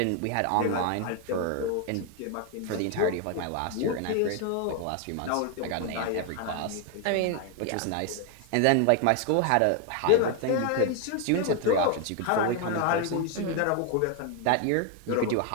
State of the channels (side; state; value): both; different; correlation 0.01